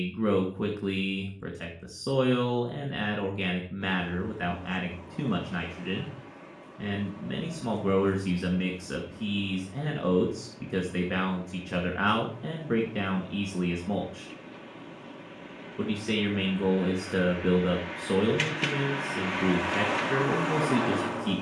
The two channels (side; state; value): both; identical; correlation 1.00